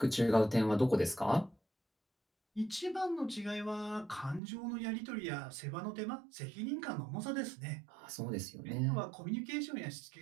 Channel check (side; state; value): left; drops out; at 4.4 s